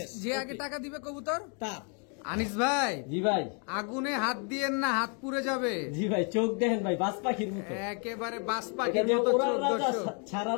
যে আগে টাকা দিবে কবুতর তার। আনিস ভাই জি ভাই। আগুনে হাত দিয়েন না, হাত পুড়ে যাবে। জি ভাই চোখ দেখেন ভাই, বাজ পাখির মতো, একেবারে বাস এটা পাখির যে মতো ওড়ার চোখ। রাজা, দর্শক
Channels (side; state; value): right; quieter; 38.7 dB